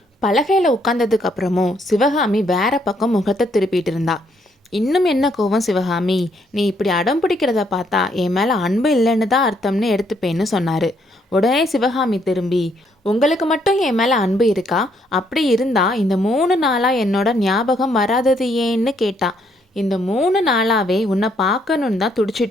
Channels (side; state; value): both; normal; correlation 0.71